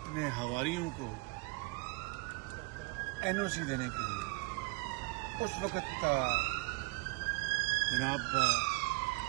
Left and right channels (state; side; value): quieter; left; 25.9 dB